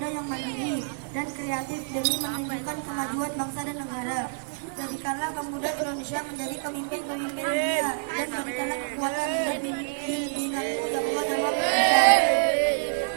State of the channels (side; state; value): left; silent; digital silence